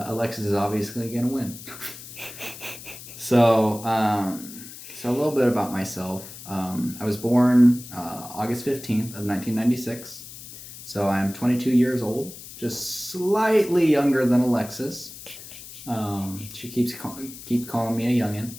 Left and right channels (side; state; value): left; noise; hiss, 14 dB below the sound